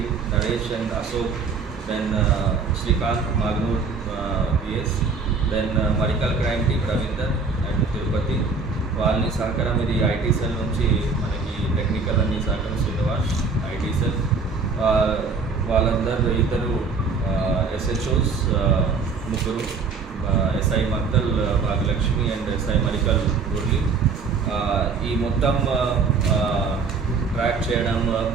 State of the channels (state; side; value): quieter; left; 4.7 dB